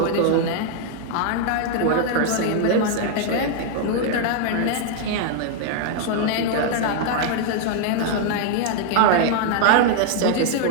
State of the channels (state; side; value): different; both; correlation 0.00